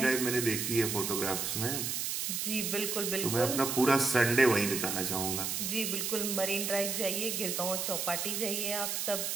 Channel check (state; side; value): noise; right; hiss, 1 dB below the sound